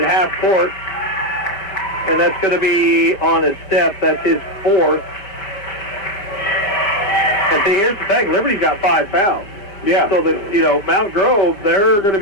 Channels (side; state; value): right; late; 5.1 ms